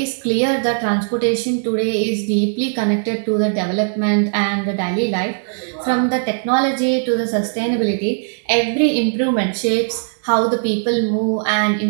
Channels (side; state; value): left; silent; digital silence